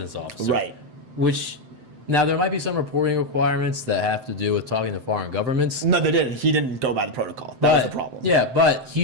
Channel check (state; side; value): late; left; 7.8 ms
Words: officer. Right. Which, now there might be some reporting requirements that have to do with talking to foreign governments. No, they didn't. He didn't go by the protocol. That was the problem. Yeah, but he